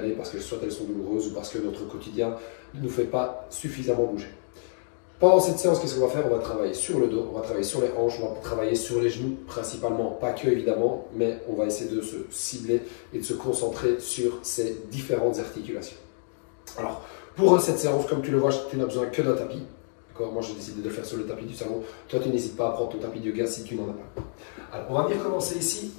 parce que soit elles sont douloureuses ou parce que notre quotidien ne nous fait pas suffisamment bouger. Pendant cette séance, qu'est-ce qu'on va faire? On va travailler sur le dos, on va travailler sur les hanches, on va travailler sur les genoux principalement, pas que évidemment, mais on va essayer de se cibler et de se concentrer sur ces différentes articulations. Alors, pour cette séance, comme tu le vois, tu n'as besoin que d'un tapis. Moi, j'ai décidé de le faire sur le tapis du salon. Toi, tu n'hésites pas à prendre ton tapis de yoga si tu n'en as pas. Alors, on va venir commencer ici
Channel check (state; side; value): silent; right; 59 dB below the other